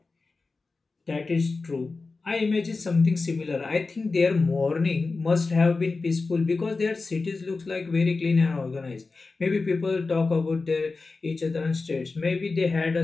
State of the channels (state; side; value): quieter; right; 3.9 dB